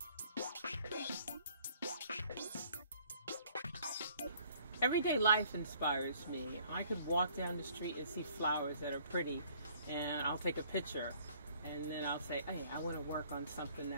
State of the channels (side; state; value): both; inverted; correlation -0.59